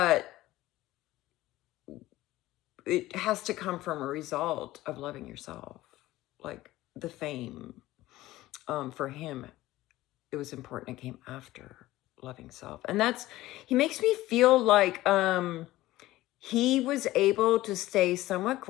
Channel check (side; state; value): right; quieter; 16.8 dB